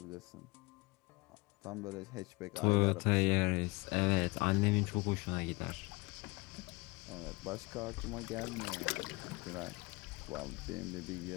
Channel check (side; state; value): right; quieter; 24.5 dB